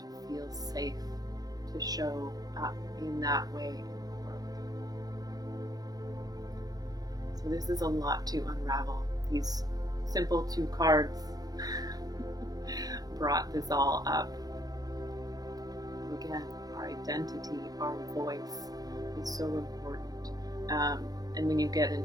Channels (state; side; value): late; left; 0.19 ms